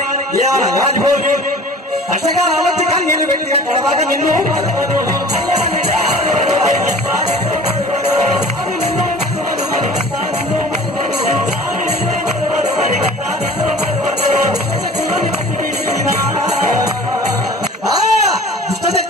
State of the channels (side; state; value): both; normal; correlation 0.44